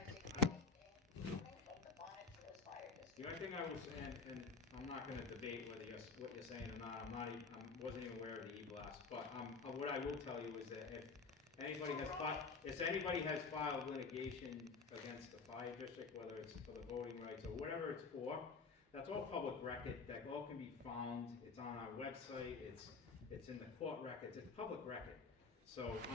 anything from the Bonnetsville Fire District. the only thing I was saying, and I'm not gonna debate what you're saying or not, wasn't even aware of the e-blast, but, what I will tell you is that if anybody has filed litigation against the fire district, whether it's for the voting rights or whatever it's for, that's all public record, that all can be found, it's on our website, it's in the court records, it's public record. So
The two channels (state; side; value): quieter; right; 4.7 dB